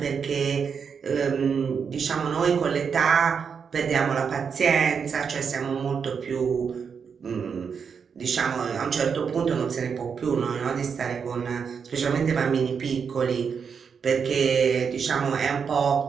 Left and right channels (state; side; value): quieter; left; 6.4 dB